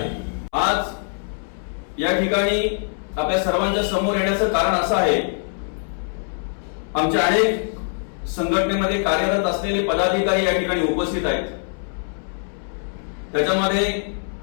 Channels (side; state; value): right; silent; 62 dB below the other